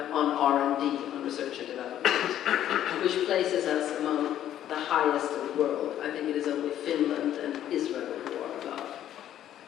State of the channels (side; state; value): right; quieter; 11.4 dB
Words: R&D, on research and development, which places us among the highest in the world. I think it is only Finland and Israel who are above.